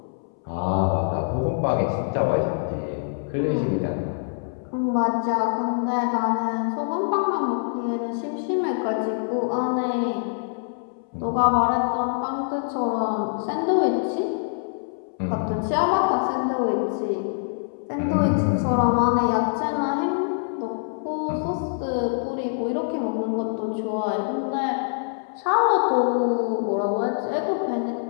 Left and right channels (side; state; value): right; silent; 62 dB below the other